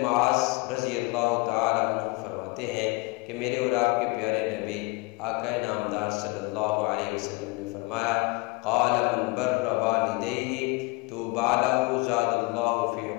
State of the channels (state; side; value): quieter; right; 25.6 dB